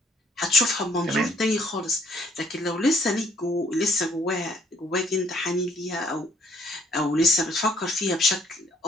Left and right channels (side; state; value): both; normal; correlation 0.64